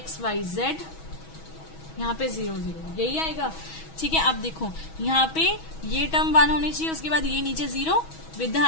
y, z, यहाँ पे 0, 0, यही आएगा। ठीक है, अब देखो यहाँ पे ये टर्म 1 होनी चाहिए, उसके बाद ये नीचे 0 विद द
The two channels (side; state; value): right; late; 6.2 ms